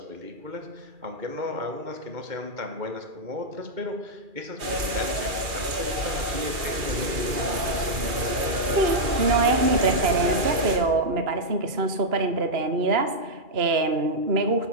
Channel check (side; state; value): left; late; 2.4 ms